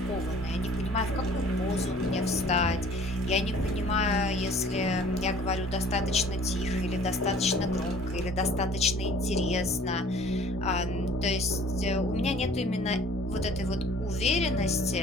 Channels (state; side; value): normal; both; correlation 0.51